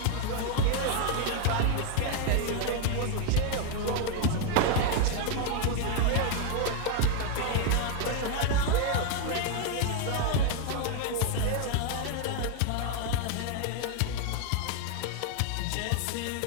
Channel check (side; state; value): both; different; correlation 0.00